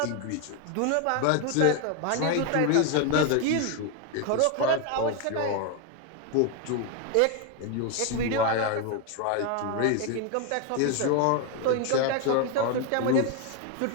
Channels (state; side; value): different; both; correlation 0.01